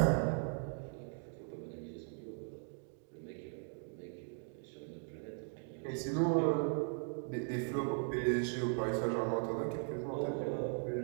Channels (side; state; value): left; silent; 52 dB below the other